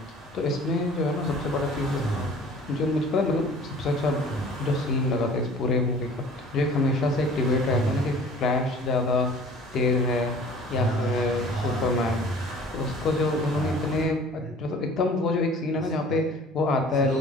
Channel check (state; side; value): normal; both; correlation 0.48